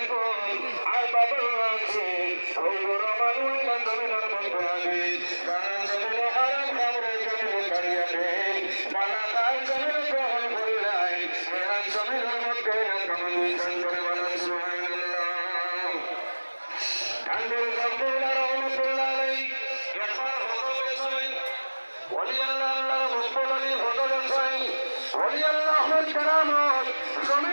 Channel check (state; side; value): inverted; both; correlation -1.00